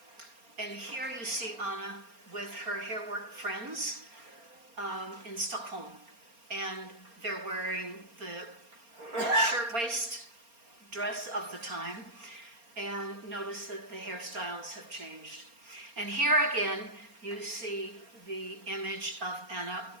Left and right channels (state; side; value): late; left; 4.3 ms